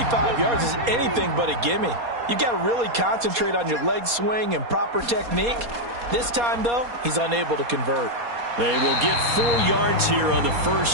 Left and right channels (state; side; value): late; left; 4.2 ms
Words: yards is anything but a gimme. You've got to really concentrate on your leg swing and proper technique. This time, though, he's unable to convert. They will get 4 yards here on the